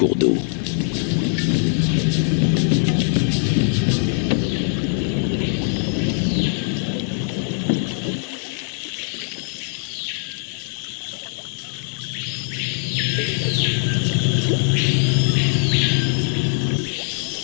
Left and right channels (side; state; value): right; silent; 57 dB below the other